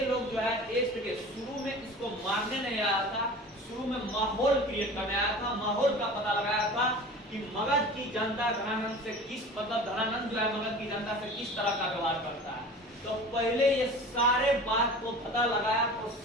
लोग जो है टेस्ट के शुरू में इसको मारने नहीं आया था, शुरू में माहौल क्रिएट करने आया था, माहौल का पता लगाया था कि मगध की जनता धनानंद से किस मतलब धनानंद जो है मगध की जनता से किस तरह का व्यवहार करता है। तो पहले ये सारे बात को पता लगाया तो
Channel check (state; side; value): normal; both; correlation 0.38